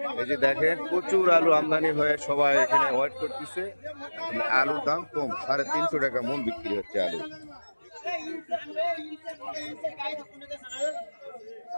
এই যে দেখেন, প্রচুর আলু আমদানি হয়ে সবাই এখানে ওয়েট করতেছে। আলুর দাম কম, 350 টাকা মন বিক্রি হচ্ছে আলু।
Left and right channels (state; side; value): inverted; both; correlation -1.00